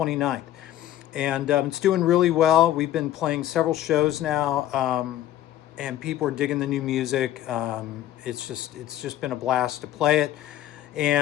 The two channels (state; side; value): quieter; right; 12.7 dB